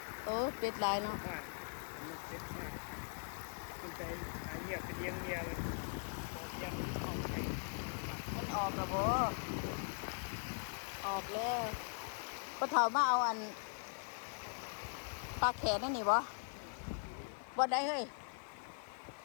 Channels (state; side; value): silent; right; 51 dB below the other